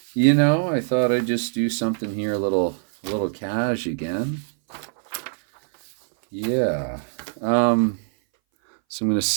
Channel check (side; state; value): left; silent; 61 dB below the other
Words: I thought I'd just do something here a little cash again. Yeah. So I'm going to